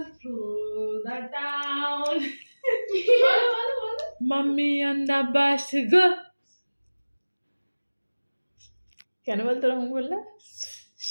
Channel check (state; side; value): inverted; both; correlation -1.00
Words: through the town. Mummy on the bus go. কেন বলতো রকম বললে?